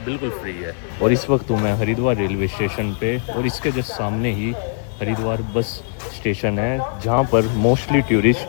बिल्कुल फ्री है। और इस वक्त हूँ मैं हरिद्वार रेलवे स्टेशन पे और इसके जस्ट सामने ही हरिद्वार बस स्टेशन है जहाँ पर मोस्टली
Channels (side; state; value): right; silent; 65 dB below the other